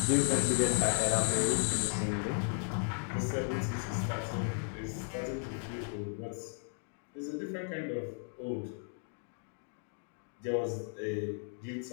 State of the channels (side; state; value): right; silent; 54 dB below the other